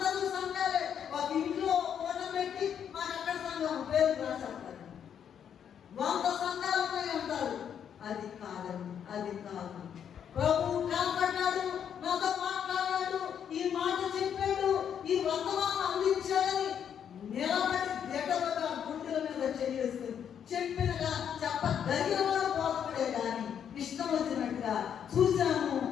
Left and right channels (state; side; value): quieter; right; 8.5 dB